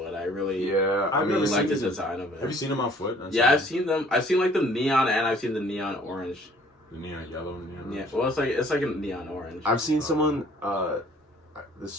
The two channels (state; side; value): normal; both; correlation 0.56